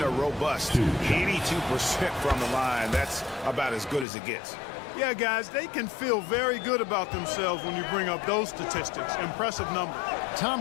a robust 82% from the line. That's about as good as it gets. Yeah, guys, they can feel very good about themselves when you bring up those statistics. Impressive numbers.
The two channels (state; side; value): drops out; right; at 4.0 s